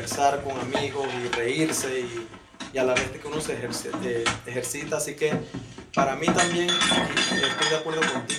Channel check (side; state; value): both; identical; correlation 1.00